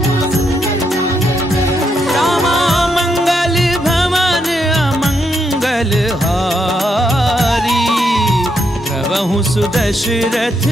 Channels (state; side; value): normal; both; correlation 0.79